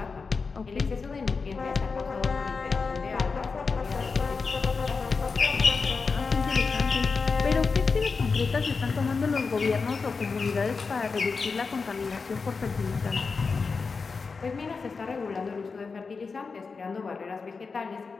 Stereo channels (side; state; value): right; quieter; 4.8 dB